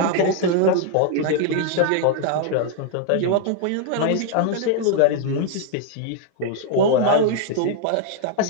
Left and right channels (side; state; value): both; different; correlation 0.00